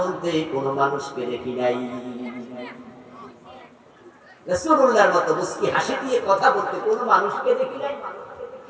কোনো মানুষকে দেখি নাই। রাসূলুল্লাহর মতো মুস্কি হাসি দিয়ে কথা বলতে কোনো মানুষকে দেখি নাই।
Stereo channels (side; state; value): both; identical; correlation 1.00